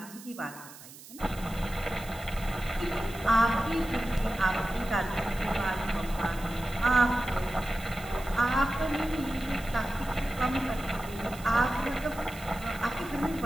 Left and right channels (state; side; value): noise; right; hiss, 17 dB below the sound